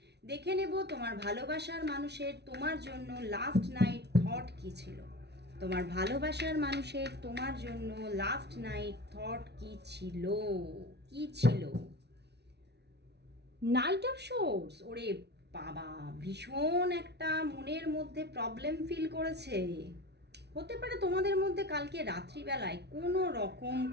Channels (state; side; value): late; left; 0.49 ms